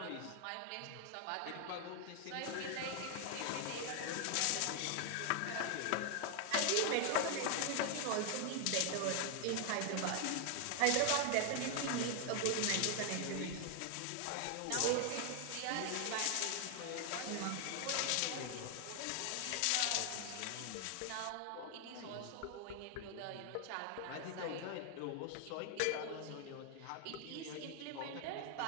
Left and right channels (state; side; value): different; both; correlation 0.00